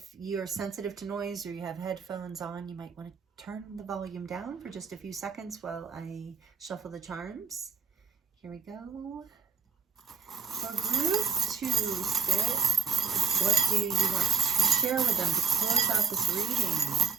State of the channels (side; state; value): left; quieter; 5.5 dB